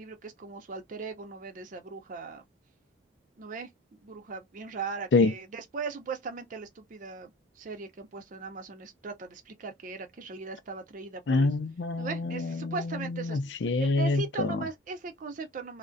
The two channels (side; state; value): both; normal; correlation 0.42